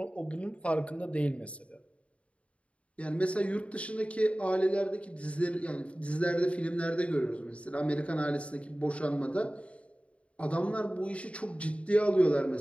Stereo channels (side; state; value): right; late; 0.063 ms